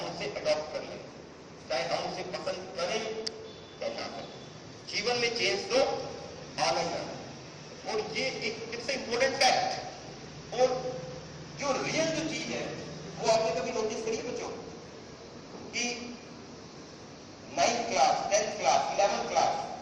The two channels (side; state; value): both; identical; correlation 1.00